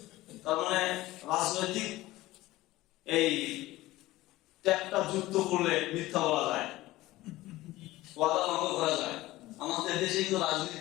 তার মানে রাজনৈতিক এই ট্যাগটা যুক্ত করলে মিথ্যা বলা যায়, ওয়াদা ভঙ্গ করা যায়। আমাদের দেশে কিন্তু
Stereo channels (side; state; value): right; quieter; 17.6 dB